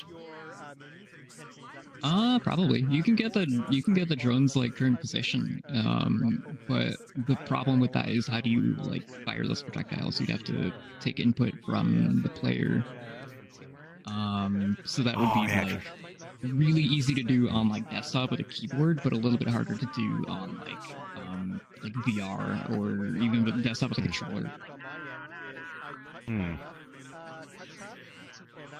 Probably. You can get the drone's like current position, but the problem with that is how do you like fire those projectiles? You'd have to take input from the player. So that would be like really easy to do on like desktop with a keyboard, but a little bit harder to do on like VR or even with desktop with a controller.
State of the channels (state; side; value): identical; both; correlation 1.00